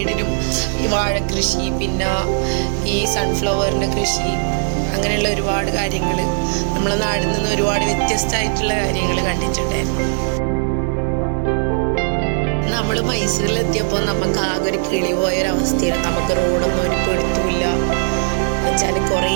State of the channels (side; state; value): left; silent; 65 dB below the other